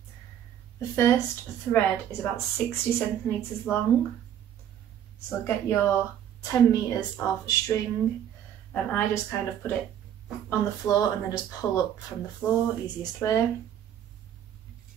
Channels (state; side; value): quieter; left; 10.0 dB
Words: The first thread is about 60 centimetres long. So get your 10 metres of string, and I just kind of put it on the floor and then just pull up from the floor, easiest way.